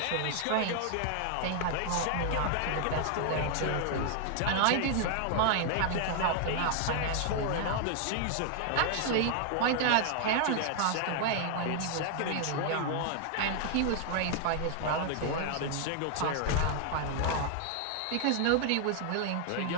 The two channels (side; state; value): both; different; correlation 0.00